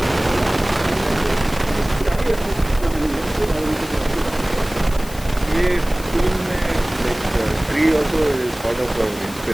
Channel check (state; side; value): noise; left; hiss, 16 dB below the sound